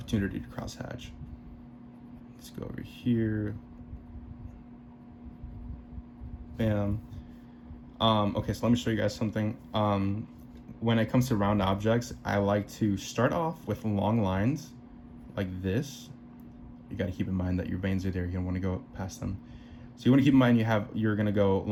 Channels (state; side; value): identical; both; correlation 1.00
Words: to cross-hatch. Let's go over here. Bam. Okay, so let me show you guys something. When it comes to round objects, I like to start off with long lines like this. You got to keep in mind that your veins are there. You don't want to go past them. So you want to keep in mind you're going to go